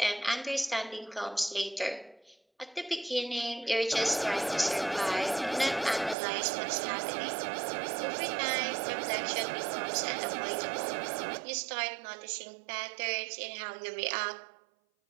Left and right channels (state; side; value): drops out; left; at 6.2 s